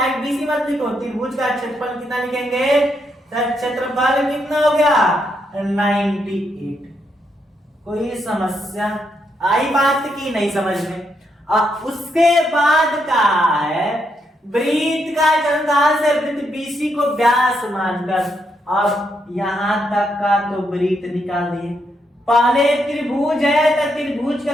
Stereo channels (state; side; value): normal; both; correlation 0.79